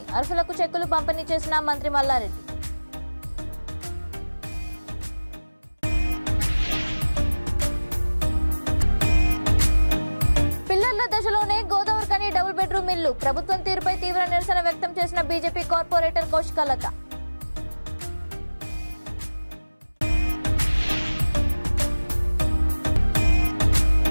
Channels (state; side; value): inverted; both; correlation -1.00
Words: అర్హులకు చెక్కులు పంపిణీ చేసిన మంత్రి మల్లారెడ్డి. పిల్లర్ల దశలోనే గోదావరికని డబుల్ బెడ్రూమ్ ఇల్లు. ప్రభుత్వం తీరుపై తీవ్ర నిరసన వ్యక్తం చేసిన బీజేపీ కార్పొరేటర్ కౌశికలత.